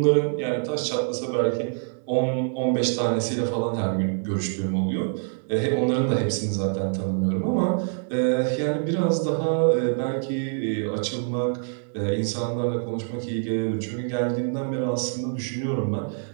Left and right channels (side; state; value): left; silent; digital silence